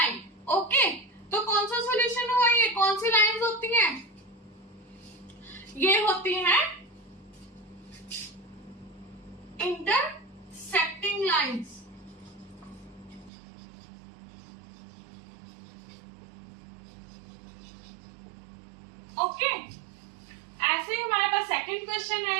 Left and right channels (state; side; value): drops out; left; at 13.3 s